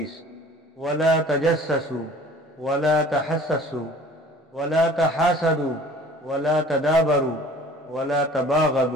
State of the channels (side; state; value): both; normal; correlation 0.49